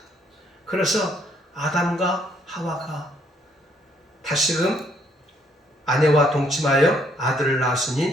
그래서 아담과 하와가 다시금 아내와 동침하여 아들을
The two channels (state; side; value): normal; both; correlation 0.68